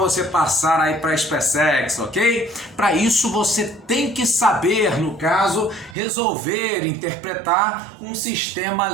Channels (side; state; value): left; drops out; at 6.0 s